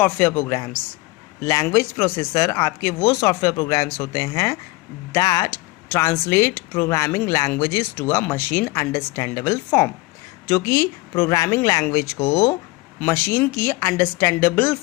programs. Language processor आपके वो सॉफ्टवेयर प्रोग्राम्स होते हैं that translate programming languages to a machine understandable form, जो कि प्रोग्रामिंग लैंग्वेज को मशीन की अंडरस्टैंडेबल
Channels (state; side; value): quieter; right; 21.4 dB